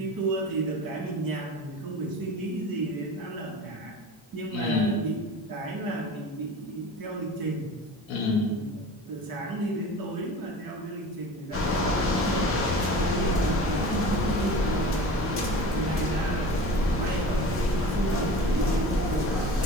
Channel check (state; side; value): normal; both; correlation 0.37